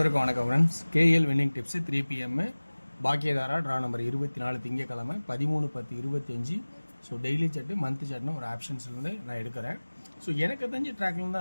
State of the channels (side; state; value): both; inverted; correlation -1.00